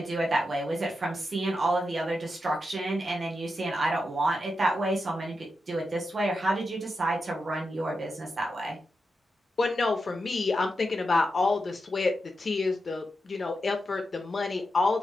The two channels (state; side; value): normal; both; correlation 0.87